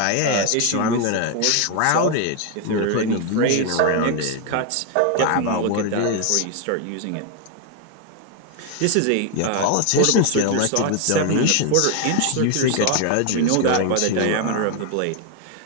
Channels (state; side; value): different; both; correlation 0.01